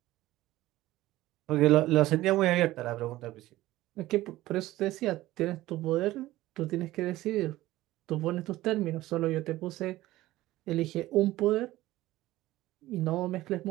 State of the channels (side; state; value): left; quieter; 16.6 dB